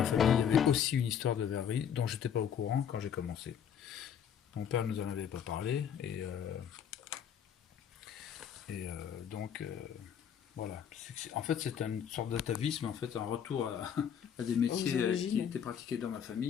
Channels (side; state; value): right; quieter; 8.4 dB